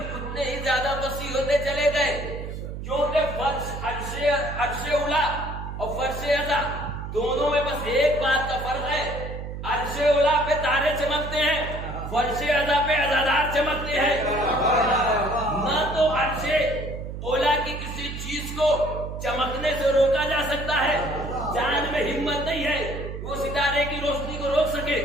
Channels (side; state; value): right; noise; hum, 7 dB below the sound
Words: ہی زیادہ وسیع ہوتے چلے گئے، کیونکہ عرش اولا اور فرش عزا دونوں میں بس ایک بات کا فرق ہے، عرش اولا پہ تارے چمکتے ہیں، فرش عزا پہ عزادار چمکتے ہیں۔ نہ تو عرش اولا کی کسی چیز کو چمکنے سے روکا جا سکتا ہے، جان میں ہمت نہیں ہے وہ ستارے کی روشنی کو روک سکے،